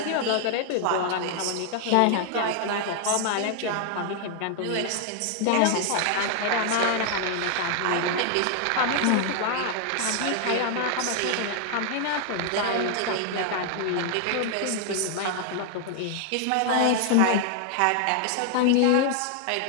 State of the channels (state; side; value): different; both; correlation 0.00